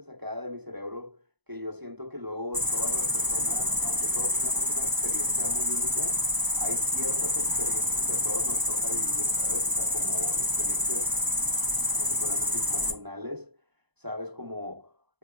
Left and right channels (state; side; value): late; left; 1.0 ms